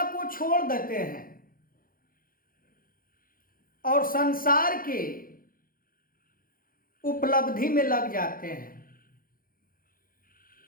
को छोड़ देते हैं और संसार के उपलब्धि में लग जाते हैं।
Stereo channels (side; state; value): right; late; 0.41 ms